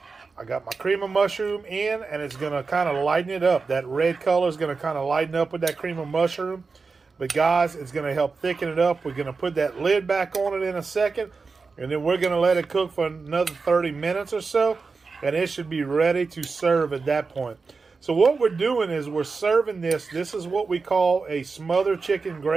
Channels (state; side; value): quieter; left; 4.5 dB